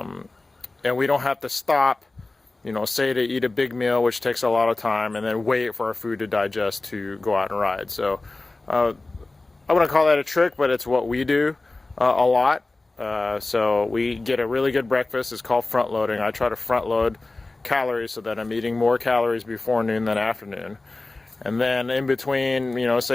we don't have to stop, say to eat a big meal, which takes a lot of time, and then wait for our food to digest to go out and ride. So I wouldn't call that a trick, but it's what we do a lot. So we get a really good breakfast. It's called front loading. I try to front load calories so that I'm eating more calories before noon than afternoon. And then in between,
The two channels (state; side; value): quieter; right; 3.1 dB